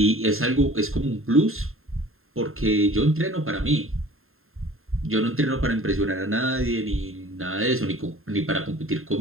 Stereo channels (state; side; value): late; left; 0.61 ms